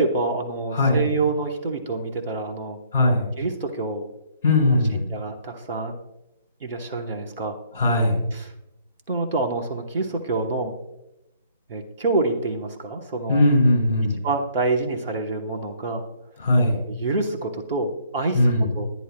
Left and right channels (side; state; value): both; inverted; correlation -0.62